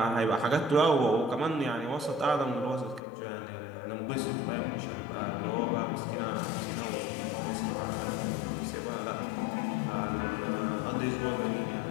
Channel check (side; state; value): right; drops out; at 3.0 s